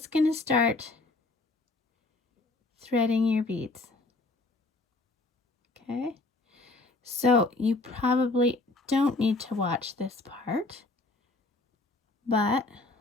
going to start threading your beads. Okay. So you probably don't need to watch this part, but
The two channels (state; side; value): quieter; right; 3.2 dB